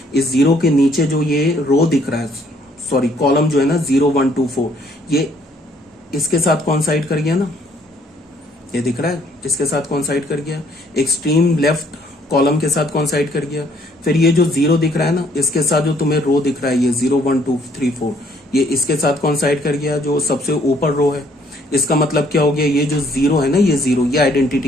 इस 0 के नीचे जो ये रो दिख रहा है, सॉरी कॉलम जो है ना 0 1 2 4, ये इसके साथ कॉन्साइड कर गया ना, ये दिख रहा है इसके साथ कॉन्साइड कर गया, एक्सट्रीम लेफ्ट कॉलम के साथ कॉन्साइड कर गया। फिर ये जो 0 दिख रहा है ना, इसके साथ जो तुम्हें रो दिख रहा है ये 0 1 2 3 4, ये इसके साथ कॉन्साइड कर गया जो सबसे ऊपर रो है। इसका मतलब क्या हो गया, ये जो 0 है ना, ये 0 ये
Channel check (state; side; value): normal; both; correlation 0.64